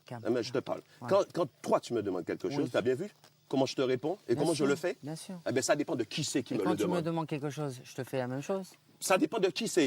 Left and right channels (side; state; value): both; identical; correlation 1.00